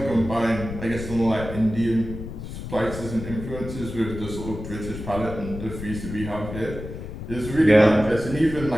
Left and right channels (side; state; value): left; noise; rumble, 9 dB below the sound